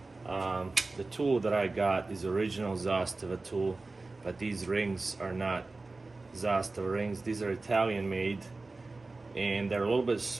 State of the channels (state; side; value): quieter; left; 3.4 dB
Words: The tool that I got is original Zastava tool, but these rings are not Zastava rings. These are Italian made, and they're a little bit